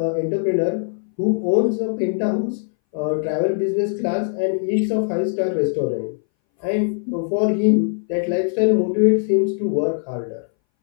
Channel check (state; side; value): silent; right; 62 dB below the other